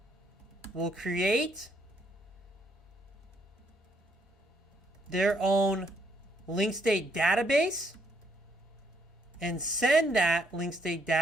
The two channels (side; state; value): both; normal; correlation 0.72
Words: will create their own link state database and send that link state